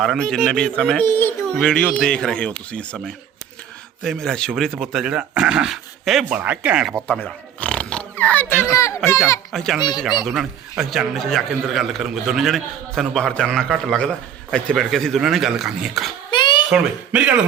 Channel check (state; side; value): quieter; left; 9.1 dB